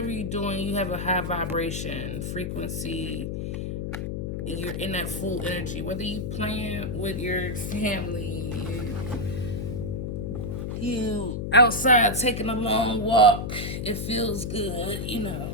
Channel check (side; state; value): left; noise; hum, 3 dB below the sound